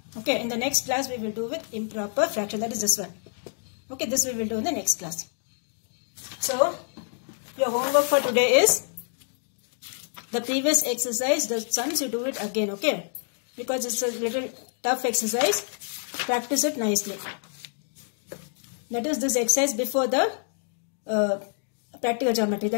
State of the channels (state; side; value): silent; right; 60 dB below the other